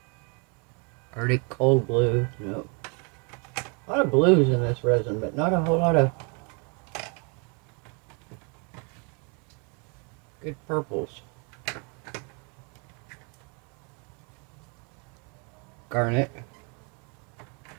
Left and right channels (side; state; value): left; quieter; 34.7 dB